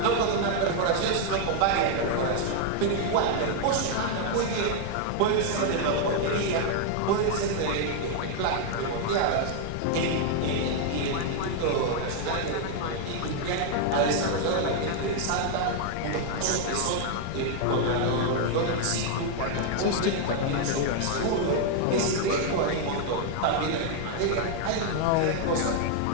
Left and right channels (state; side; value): different; both; correlation 0.00